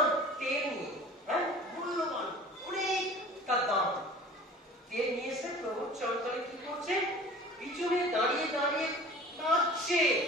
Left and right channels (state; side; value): normal; both; correlation 0.43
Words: তেল নিয়ে, মূল্যবান অনেকটা দাম তেল নিয়ে এসে প্রভুর চরণতলে কি করছে, পিছনে দাঁড়িয়ে দাঁড়িয়ে কাঁদছে।